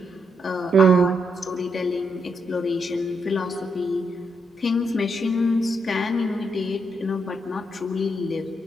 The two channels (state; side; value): normal; both; correlation 0.79